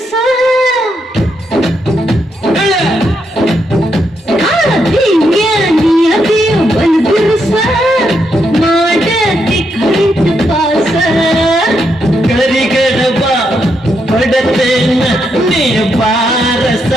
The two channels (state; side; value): normal; both; correlation 0.80